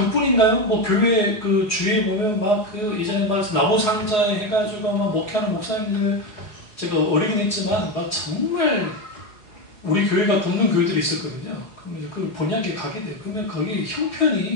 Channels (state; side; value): late; right; 4.8 ms